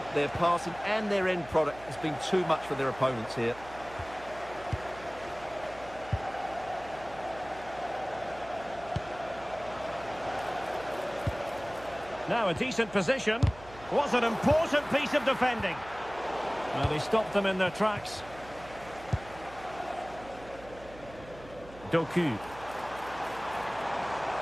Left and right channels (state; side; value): noise; right; hum, 18 dB below the sound